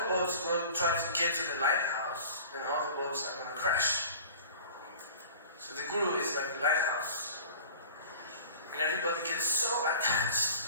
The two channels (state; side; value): inverted; both; correlation -0.42